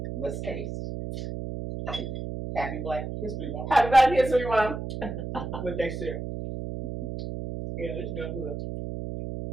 let's taste. Happy Black History Month. Happy Black History Month. What they said. Yeah, this is good.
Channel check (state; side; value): noise; right; hum, 6 dB below the sound